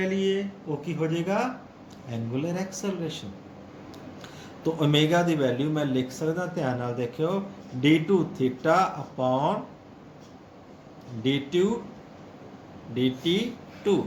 लिए वो की हो जाएगा एंगुलर एक्सेलरेशन। तो ओमेगा की वैल्यू मैं लिख सकता, ध्यान नाल देखियो, D two theta upon D T two.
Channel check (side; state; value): both; identical; correlation 1.00